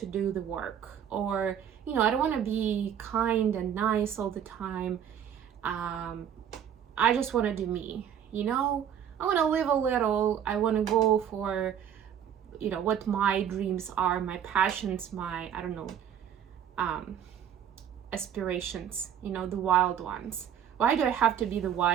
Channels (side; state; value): left; quieter; 9.1 dB